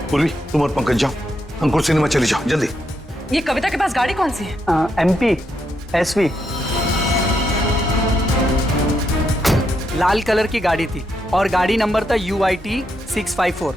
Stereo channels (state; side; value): normal; both; correlation 0.80